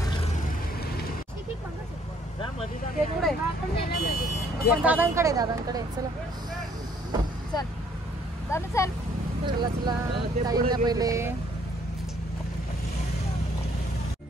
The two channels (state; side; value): normal; both; correlation 0.63